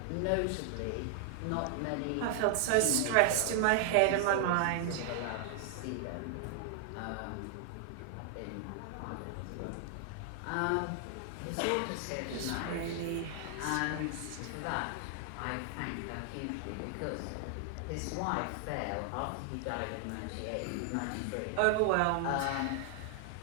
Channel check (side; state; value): both; different; correlation 0.00